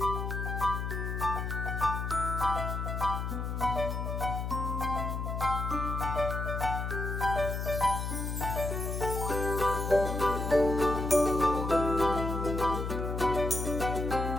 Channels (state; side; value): noise; left; hum, 3 dB below the sound